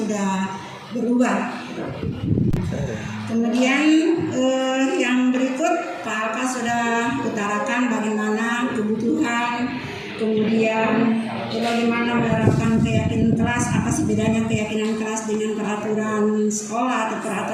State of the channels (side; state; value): both; identical; correlation 1.00